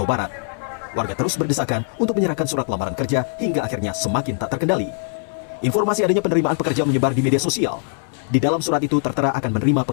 Barat. Warga terus berdesakan untuk menyerahkan surat lamaran kerja hingga akhirnya semakin tak terkendali. Informasi adanya penerimaan pekerja menyebar di media sosial. Di dalam surat itu tertera akan menerima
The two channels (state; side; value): silent; right; 60 dB below the other